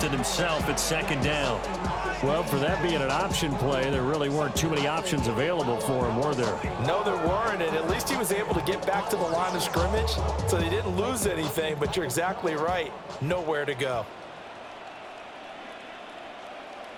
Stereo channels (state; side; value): identical; both; correlation 1.00